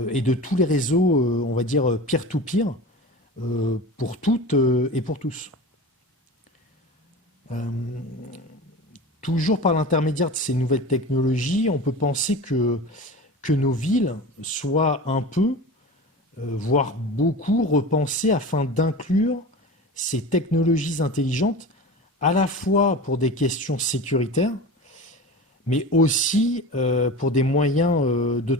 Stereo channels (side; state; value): both; normal; correlation 0.32